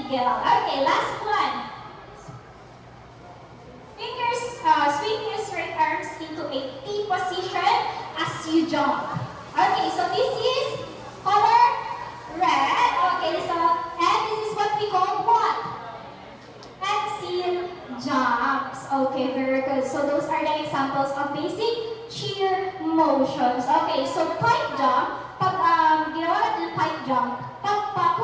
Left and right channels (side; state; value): both; identical; correlation 1.00